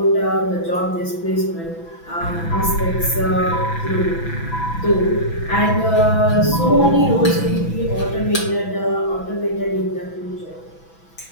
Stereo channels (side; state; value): right; late; 6.0 ms